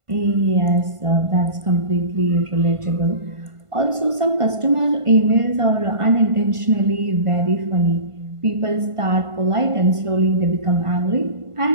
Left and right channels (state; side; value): late; left; 1.5 ms